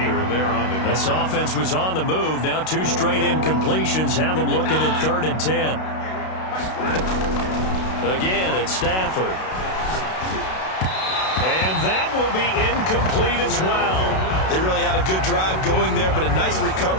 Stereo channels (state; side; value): late; right; 32 ms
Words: This offense was on the move. Now 2 straight incompletions have them looking at 3rd and 10. Again, it's Stafford. And that will be incomplete as well. They really had a good drive going there, but a nice